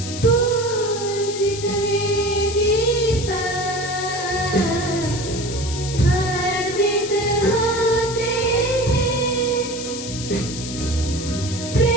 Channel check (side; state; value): left; noise; hiss, 9 dB below the sound